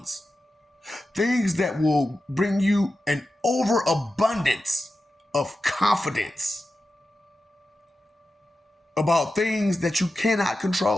Things that will bring you an overabundance of confidence about things that you cannot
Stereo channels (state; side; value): normal; both; correlation 0.92